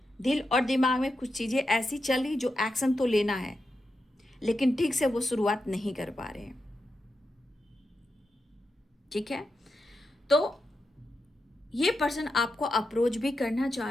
दिल और दिमाग में कुछ चीज़ें ऐसी चल रही जो एक्शन तो लेना है, लेकिन ठीक से वो शुरुआत नहीं कर पा रहे हैं, ठीक है। तो ये पर्सन आपको अप्रोच भी करना चाह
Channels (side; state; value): both; normal; correlation 0.87